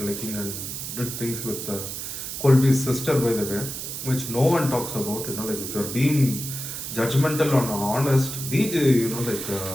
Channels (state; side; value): noise; right; hiss, 6 dB below the sound